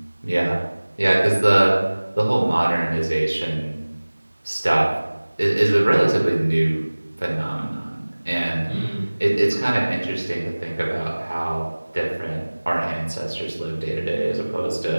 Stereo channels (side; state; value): both; inverted; correlation -1.00